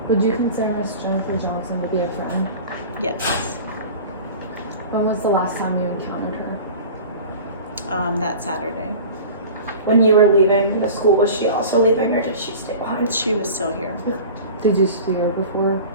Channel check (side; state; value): both; inverted; correlation -0.37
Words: Would you consider Miss Jennifer Johnson to be a friend? Yes. When was the last time you encountered her? That Saturday. When you were leaving the school, was she also leaving or did she stay behind? She was still here. Did you see her before